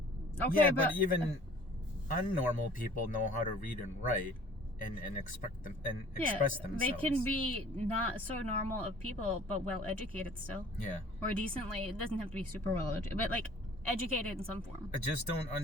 okay, yeah, but even unnormal people know how to read and write and express themselves. They can be not so normal of people, but well educated still. Yeah. Or decently. It doesn't have to be super well educated, but like educated in some form. I just don't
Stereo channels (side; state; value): both; normal; correlation 0.51